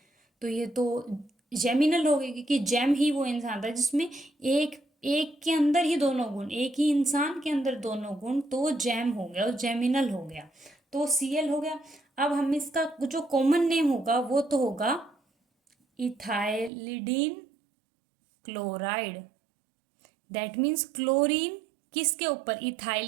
तो ये तो जेमिनल हो गई, क्योंकि जेम ही वो इंसान था जिसमें एक एक के अंदर ही दोनों गुण, एक ही इंसान के अंदर दोनों गुण, तो जेम हो गया और जेमिनल हो गया, तो Cl हो गया। अब हम इसका जो कॉमन नेम होगा वो तो होगा ethylidene chloride. That means chlorine किसके ऊपर,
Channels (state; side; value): drops out; left; at 16.7 s